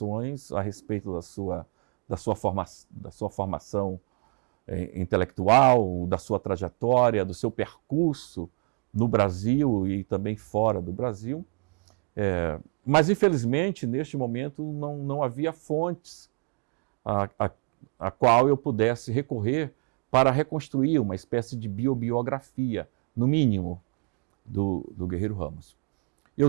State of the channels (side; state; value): left; quieter; 38.0 dB